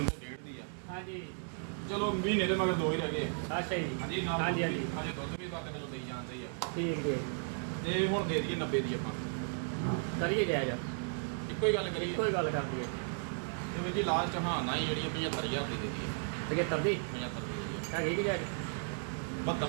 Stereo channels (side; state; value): left; silent; 54 dB below the other